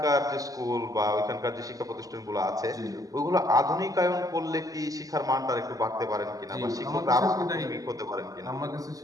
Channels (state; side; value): late; left; 0.17 ms